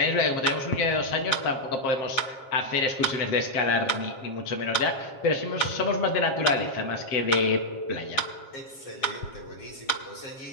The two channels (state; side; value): late; right; 7.5 ms